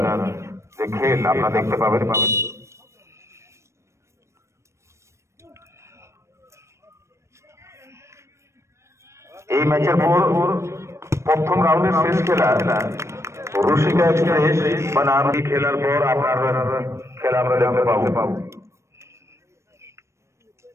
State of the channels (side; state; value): left; late; 0.13 ms